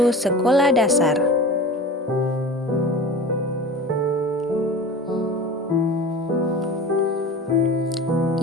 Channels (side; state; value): both; normal; correlation 0.35